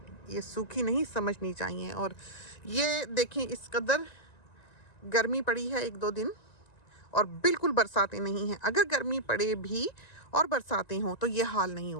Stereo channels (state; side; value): late; right; 1.9 ms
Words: ये सूखी नहीं समझनी चाहिए। और ये देखें, इस कदर गर्मी पड़ी है एक दो दिन और बिल्कुल बरसातें नहीं हैं। अगर गर्मी पड़े भी और बरसातें हों तो ये हाल नहीं